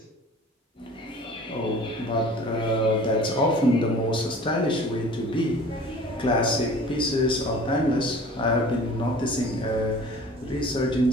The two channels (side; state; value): both; normal; correlation 0.45